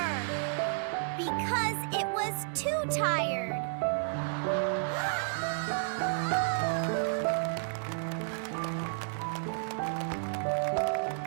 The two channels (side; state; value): left; silent; digital silence